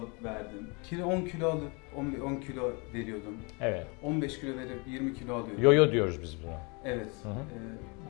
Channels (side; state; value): right; quieter; 31.2 dB